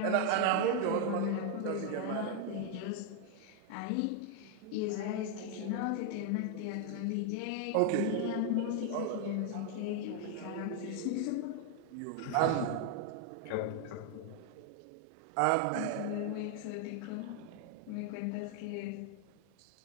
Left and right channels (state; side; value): different; both; correlation 0.01